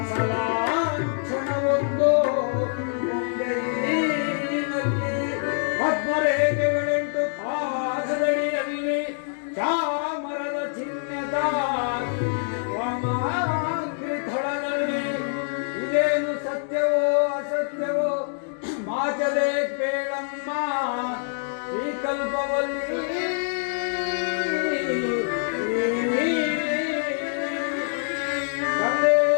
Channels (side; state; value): right; silent; digital silence